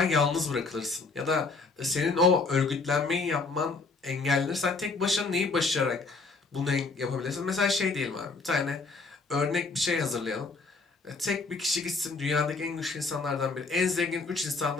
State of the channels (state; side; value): quieter; right; 4.0 dB